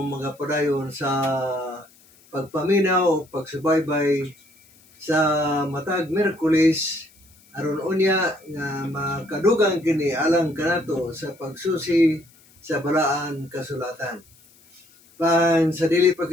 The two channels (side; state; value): left; noise; hiss, 29 dB below the sound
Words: mga padayon sa pagpaminaw o pagsubaybay sa matag Miyerkules aron unya nga makadugang kini alang kanato sa pagsusi sa balaan kasulatan. Sa dili pa